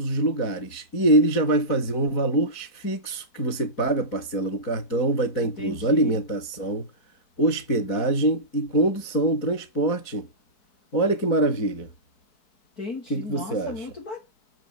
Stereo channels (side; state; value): right; late; 4.6 ms